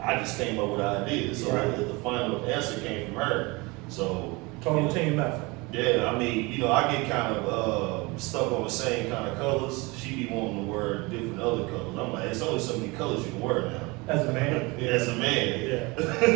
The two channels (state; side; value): quieter; left; 25.2 dB